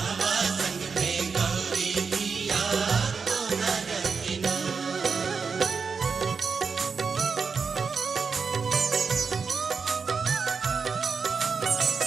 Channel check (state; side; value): quieter; left; 5.4 dB